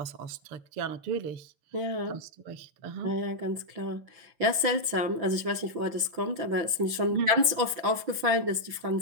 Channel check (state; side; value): late; left; 6.0 ms